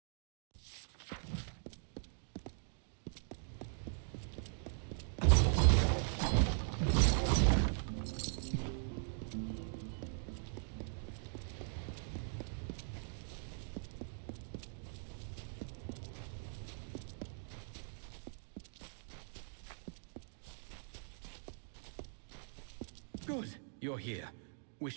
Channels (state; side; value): silent; left; digital silence